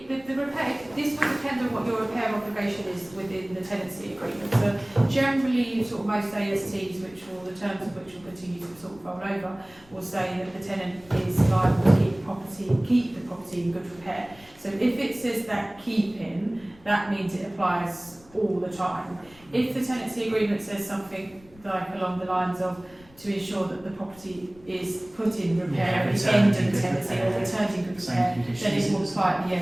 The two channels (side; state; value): left; noise; rumble, 26 dB below the sound